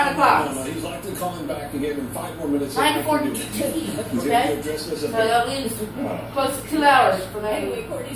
o'clock. He's likely calling back and gave him 5 more minutes. 9:42. Okay? Address this So that leaves close to 2 hours for me. Anyway,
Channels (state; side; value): identical; both; correlation 1.00